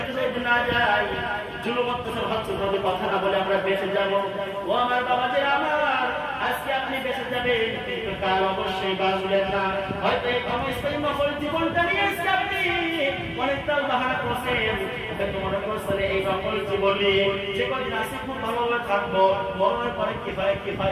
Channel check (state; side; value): identical; both; correlation 1.00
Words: না যাই, জুলুম অত্যাচার হচ্ছে ভাবে কথা না বলে আমরা বেঁচে যাব। ও আমার বাবা যে আমার, আজকে আপনি বেঁচে যাবেন, কিন্তু কাল অবশ্যই বাঁচবেন না। হয়তো এই ক্ষমস্থায়ী নকল জীবনটা নিয়ে আজকে আপনি অনেকটা বাহানা করছেন, হয়তো মনে করছেন এই নকল জীবন নিয়ে যে কদিন আছে খুব ভালোভাবে থাকবো, মরণের পরে কি